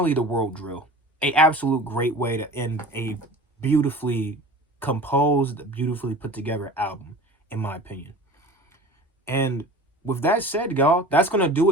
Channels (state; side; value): normal; both; correlation 0.39